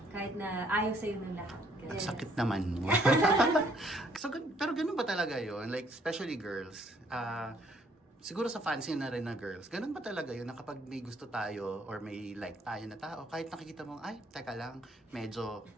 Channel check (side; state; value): both; normal; correlation 0.65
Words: kahit na ayaw sa'yo ng lahat. Yes. Sakit naman. So, pero ganun ba talaga yun? Like, especially girls. Siguro sa fancy na rin na girls, ganun ba talaga yun na kapag may gusto tayo or may like tayo na tao, kahit nakikita mo, ay, teka lang, medyo,